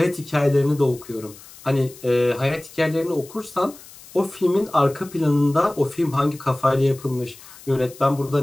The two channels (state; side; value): noise; left; hiss, 20 dB below the sound